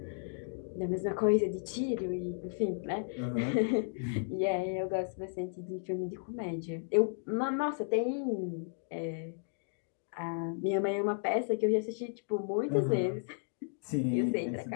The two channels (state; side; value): silent; right; digital silence